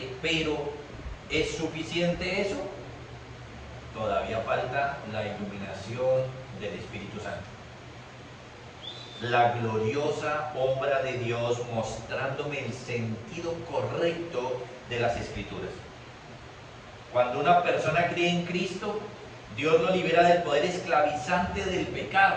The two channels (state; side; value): identical; both; correlation 1.00